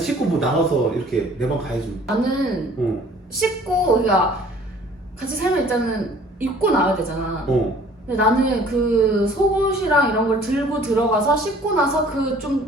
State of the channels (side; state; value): both; normal; correlation 0.53